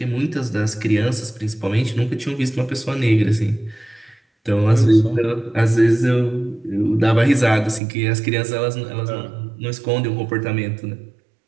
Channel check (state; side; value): drops out; left; at 7.8 s